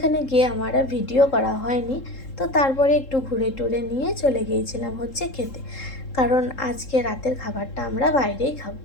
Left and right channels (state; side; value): late; right; 3.7 ms